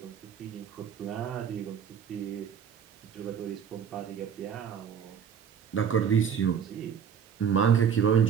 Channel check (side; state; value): left; quieter; 7.7 dB